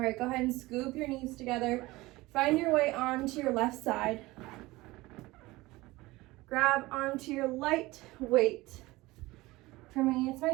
go ahead and scoop your knees together. Find your way onto your left side. Grab onto your light weight. For me, it's my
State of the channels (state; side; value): quieter; left; 20.1 dB